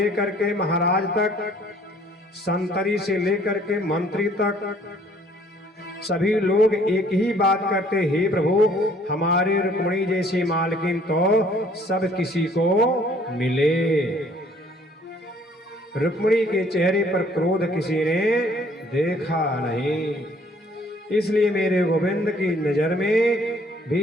के महाराज तक, संतरी से लेकर के मंत्री तक, सभी लोग एक ही बात करते, हे प्रभु, हमारे रुक्मिणी जैसी मालकिन तो सब किसी को मिले। रुक्मिणी के चेहरे पर क्रोध किसी ने देखा नहीं। इसलिए मेरे गोविंद की नजर में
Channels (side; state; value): both; normal; correlation 0.59